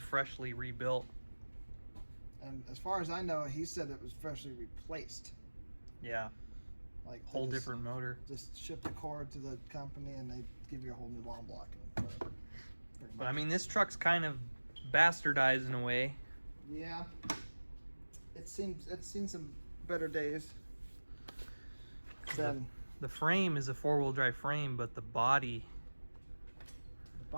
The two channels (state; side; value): inverted; both; correlation -1.00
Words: rebuilt. And as far as I know, he said it was freshly replaced. Yeah, Like they whole just- different motor. Just ship the cord to the company and they give you a whole new long block and whatever. Pretty But I much. mean, this truck's kind of bastardized in a way. Yeah. It's seen some better days. Than The frame is a four-wheel drive frame, but the body. the